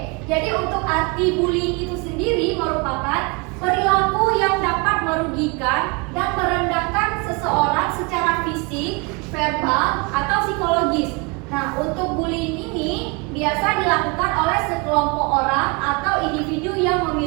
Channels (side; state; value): left; quieter; 29.6 dB